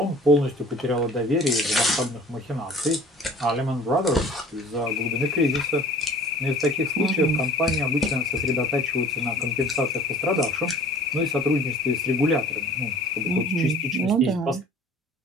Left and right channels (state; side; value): normal; both; correlation 0.47